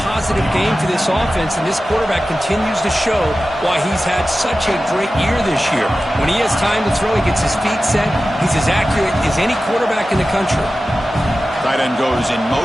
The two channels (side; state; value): both; normal; correlation 0.94